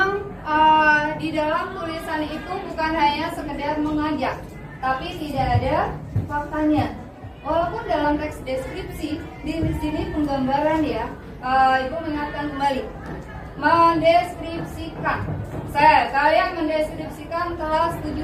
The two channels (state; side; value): identical; both; correlation 1.00